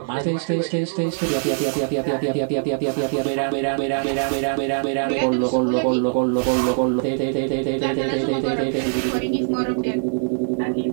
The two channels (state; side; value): silent; left; digital silence